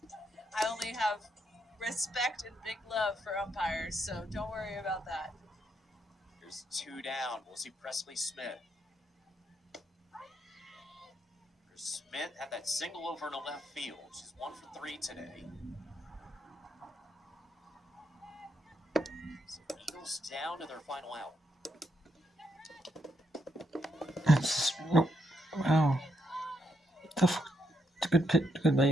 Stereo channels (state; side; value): normal; both; correlation 0.78